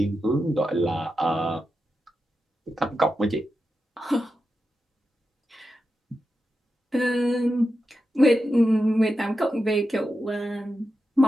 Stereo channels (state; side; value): normal; both; correlation 0.89